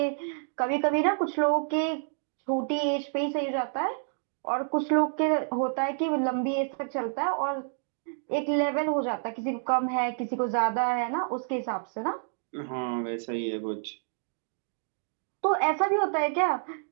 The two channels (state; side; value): silent; left; digital silence